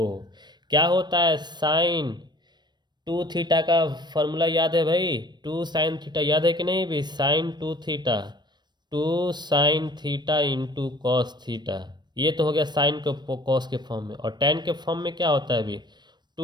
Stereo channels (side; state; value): left; late; 0.21 ms